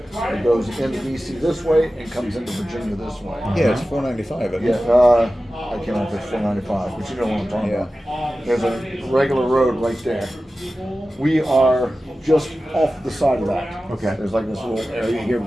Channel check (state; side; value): normal; both; correlation 0.95